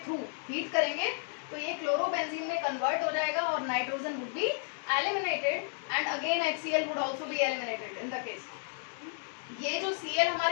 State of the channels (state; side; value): silent; right; 56 dB below the other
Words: थ्रू हीट करेंगे तो ये क्लोरोबेंजीन में कन्वर्ट हो जाएगा और nitrogen would be eliminated and again HCl would also be eliminated in the case. ये जो Cl